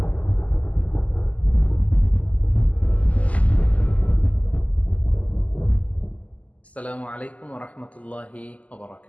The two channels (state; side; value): late; right; 0.071 ms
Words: আসসালামু আলাইকুম ওয়া রাহমাতুল্লাহি ওয়া